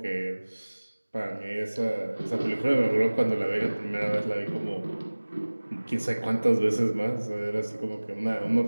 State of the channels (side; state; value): both; inverted; correlation -1.00